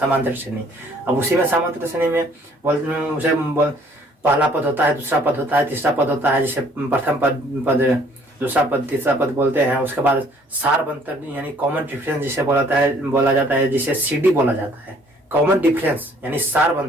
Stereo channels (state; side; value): normal; both; correlation 0.60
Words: श्रेणी। अब उसी में समांतर श्रेणी में पहला पद होता है, दूसरा पद होता है, तीसरा पद होता है। जैसे प्रथम पद दूसरा पद तीसरा पद बोलते हैं। उसके बाद सार्वंतर यानी कॉमन डिफरेंस जिसे बोला जाता है, जिसे सीडी बोला जाता है। कॉमन डिफरेंस यानी